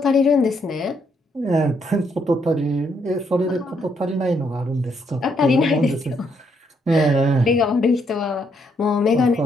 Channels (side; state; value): both; normal; correlation 0.74